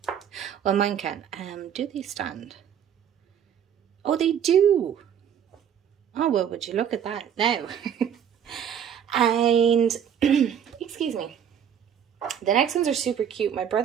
Well, mine can. Do they stand? Oh, they do. Oh, well, would you look at that now? And, excuse me. The next ones are super cute. My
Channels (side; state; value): left; quieter; 8.8 dB